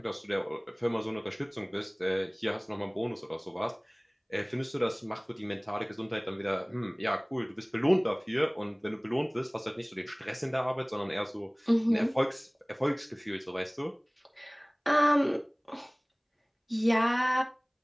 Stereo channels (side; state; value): both; identical; correlation 1.00